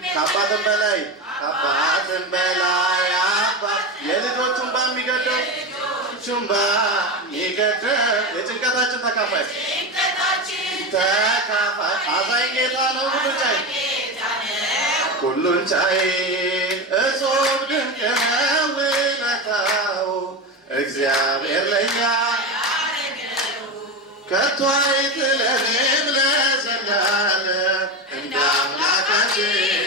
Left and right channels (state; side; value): normal; both; correlation 0.19